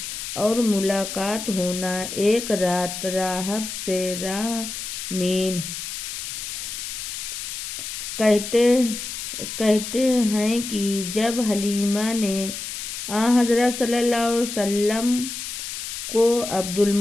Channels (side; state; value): left; noise; hiss, 7 dB below the sound